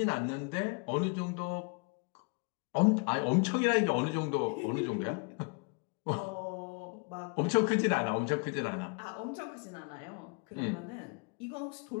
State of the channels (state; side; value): quieter; right; 34.3 dB